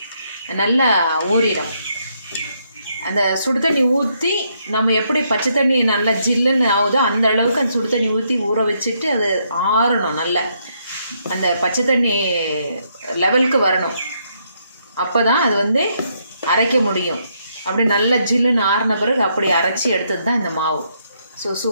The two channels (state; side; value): inverted; both; correlation -0.75